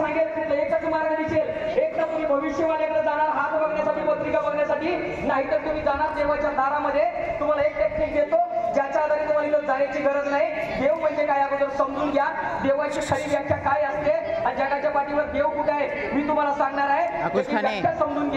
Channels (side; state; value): both; identical; correlation 1.00